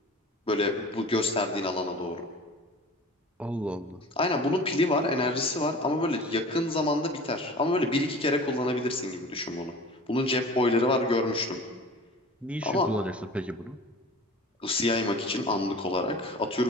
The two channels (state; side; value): normal; both; correlation 0.40